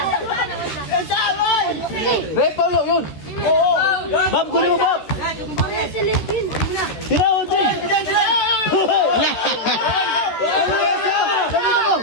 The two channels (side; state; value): right; late; 14 ms